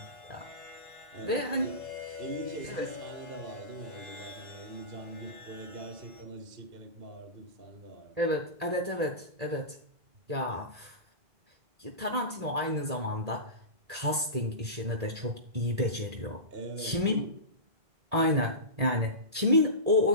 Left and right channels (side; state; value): left; late; 1.8 ms